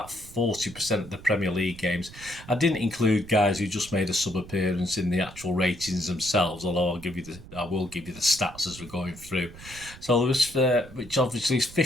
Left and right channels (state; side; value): noise; right; rumble, 17 dB below the sound